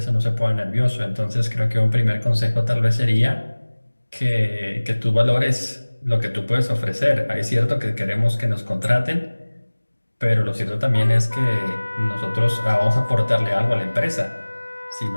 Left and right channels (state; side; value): inverted; both; correlation -1.00